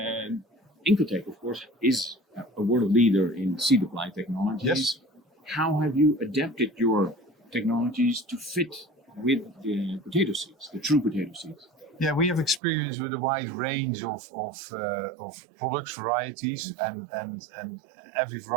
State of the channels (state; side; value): drops out; left; at 12.6 s